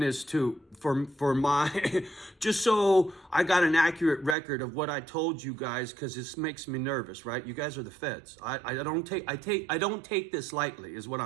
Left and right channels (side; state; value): left; drops out; at 4.4 s